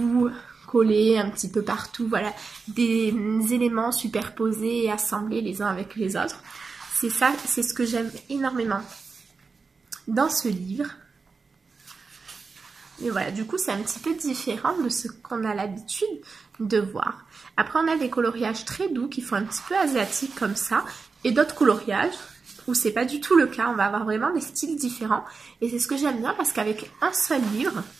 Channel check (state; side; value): quieter; left; 4.7 dB